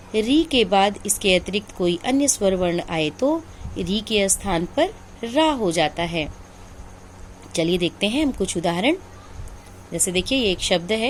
री के बाद इसके अतिरिक्त कोई अन्य स्वर वर्ण आए तो री के स्थान पर रा हो जाता है। चलिए देखते हैं हम कुछ उदाहरण। जैसे देखिए ये एक शब्द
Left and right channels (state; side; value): identical; both; correlation 1.00